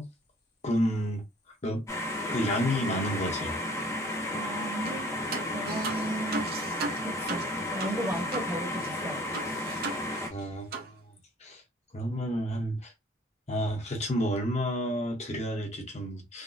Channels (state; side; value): normal; both; correlation 0.53